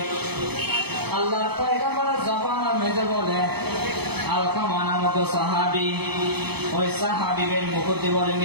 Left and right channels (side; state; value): left; late; 0.98 ms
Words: আল্লাহর পয়গম্বরের জবানের মেজে বলে আলকামা নামক সাহাবী, ওই সাহাবীদের মুকুদ্দি বলে